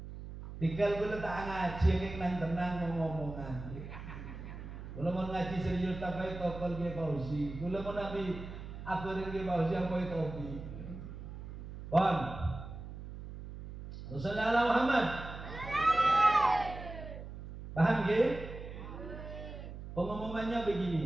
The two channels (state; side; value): noise; right; hum, 11 dB below the sound